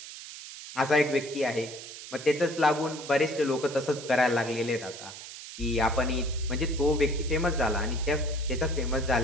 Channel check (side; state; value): right; noise; hiss, 13 dB below the sound